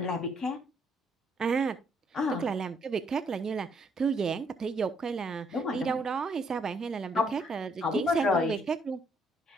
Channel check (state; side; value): normal; both; correlation 0.69